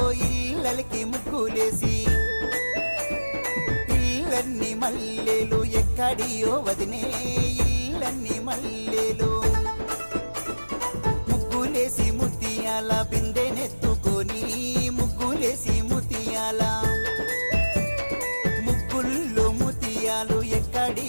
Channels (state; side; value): inverted; both; correlation -1.00